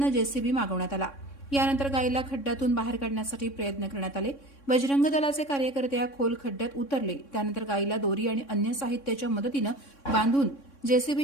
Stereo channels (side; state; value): right; late; 3.6 ms